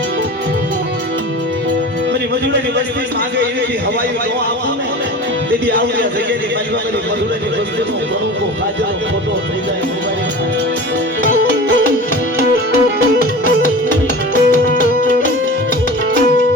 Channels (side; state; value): both; normal; correlation 0.35